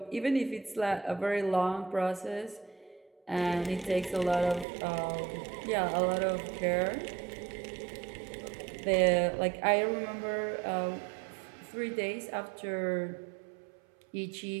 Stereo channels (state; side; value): drops out; left; at 4.7 s